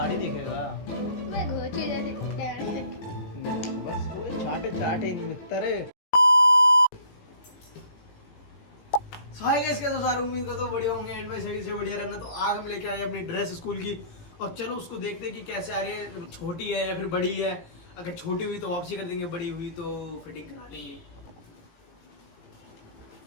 दिखेगा मैं घोची जैसे बस, वो चाटे चाटे मित्र। हाय गाइस, कैसे सारे उम्मीद करता हूँ बढ़िया होंगे एंड में सही से बढ़िया रहना। तो आज हम लेके आए अपनी ड्रेस स्कूल की, और चलो उसको देखते हैं कि कैसे आ रही है, छोटी है या फिर बड़ी है। अगर छोटी हुई तो वापसी कर देंगे, बड़ी हुई तो फिटिंग करा लेंगे।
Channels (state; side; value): late; right; 18 ms